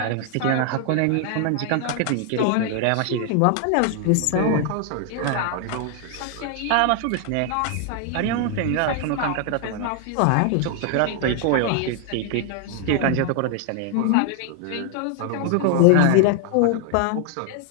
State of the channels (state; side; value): different; both; correlation 0.00